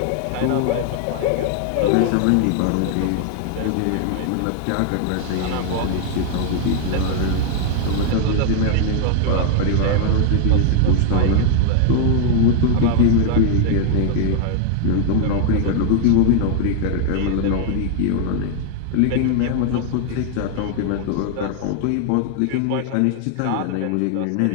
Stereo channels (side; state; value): both; different; correlation 0.00